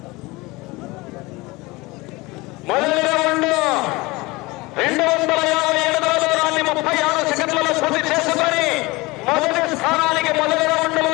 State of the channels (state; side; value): quieter; right; 22.8 dB